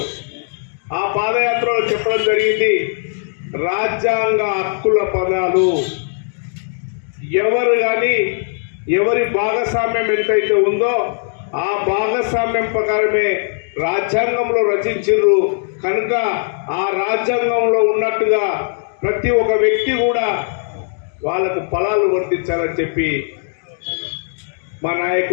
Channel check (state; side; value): silent; right; 67 dB below the other